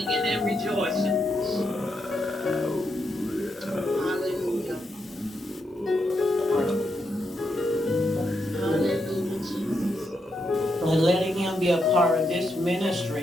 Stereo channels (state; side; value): normal; both; correlation 0.82